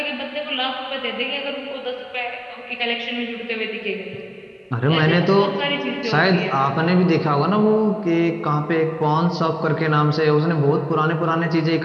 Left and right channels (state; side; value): identical; both; correlation 1.00